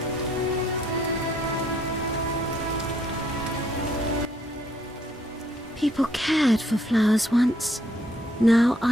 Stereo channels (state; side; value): normal; both; correlation 0.68